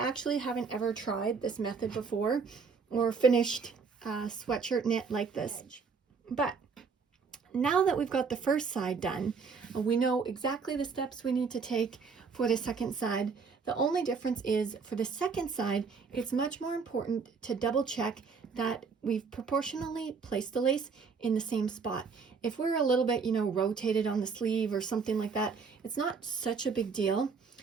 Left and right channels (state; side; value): quieter; left; 5.3 dB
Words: haven't ever tried this method before or finished a sweatshirt knit like this. But now that we've got the first side done, we know exactly the steps we need to take for the second side. The only difference is for the second side, it's much more important to double check that we've proportionally placed the lace in the same spot. If we're a little bit, rotated on the sleeve or something like that, it's not such a big deal